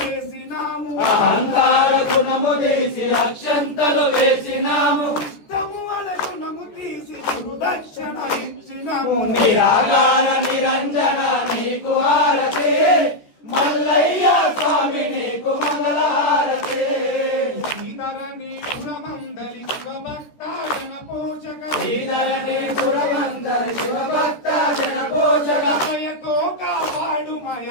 అహంకార గుణము తీసి అక్షంతలు వేసినాము ఇష్టము అనే గుణము తీసి గురుదక్షిణ ఇచ్చినాము నిరాకార నిరంజన నీకు హారతి మల్లయ్య స్వామి నీకు మంగళహారతి శ్రీధరణి గుణమందలి శివభక్త జన పోషక శ్రీధరణి గుణమందలి శివభక్త జన పోషక దయతో కాపాడు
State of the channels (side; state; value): right; late; 14 ms